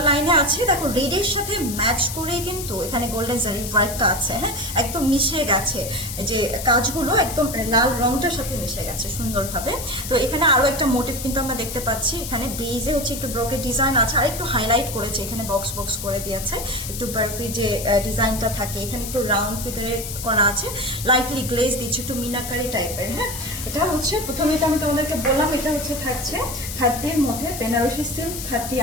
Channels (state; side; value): noise; left; hiss, 8 dB below the sound